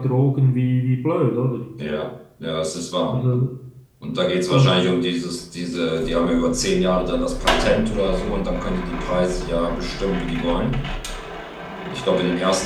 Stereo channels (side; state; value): both; identical; correlation 1.00